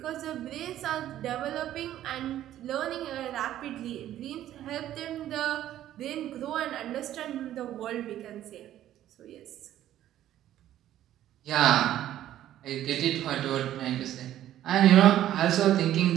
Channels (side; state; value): left; quieter; 12.5 dB